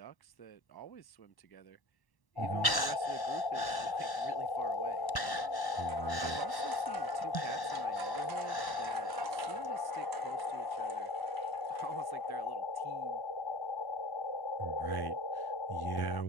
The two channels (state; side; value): late; right; 1.1 ms